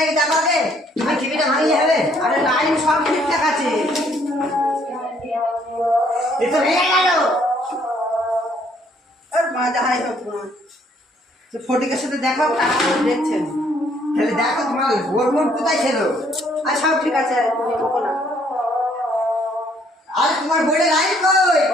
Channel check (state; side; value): normal; both; correlation 0.65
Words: দেখো আগে, তুমি টিভিটা ভাঙিয়ে হবে। আরে লাইন সব ঠিকঠাক আছে। এ তো ভেঙে গেল। আর যাই হোক সে ফটিকের সাথে দেখাও, টাকা করে দেখছেন। তাহলে দেখো তোমার ওর মন কোথায় ছিল। আর সব ঠিক আছে, তুমি বকো না। আর তোমার বোর্ডে লাইন কই?